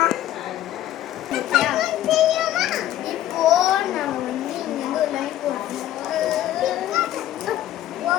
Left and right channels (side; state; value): right; quieter; 12.9 dB